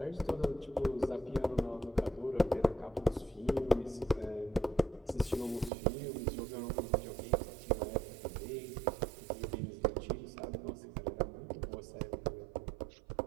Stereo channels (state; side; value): drops out; left; at 5.7 s